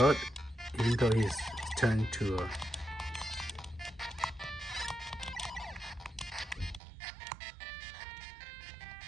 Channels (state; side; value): drops out; left; at 6.8 s